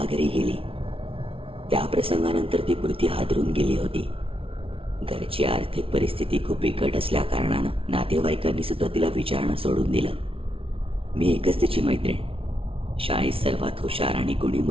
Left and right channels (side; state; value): left; late; 0.26 ms